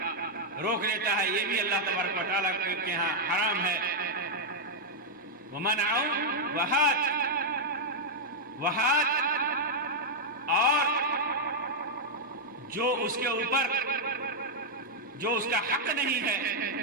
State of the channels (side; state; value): both; normal; correlation -0.03